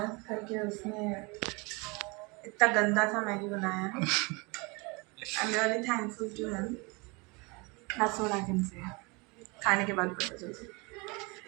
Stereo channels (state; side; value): quieter; left; 28.1 dB